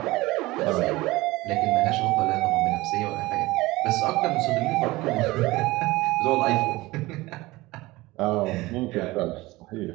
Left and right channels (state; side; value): quieter; left; 20.1 dB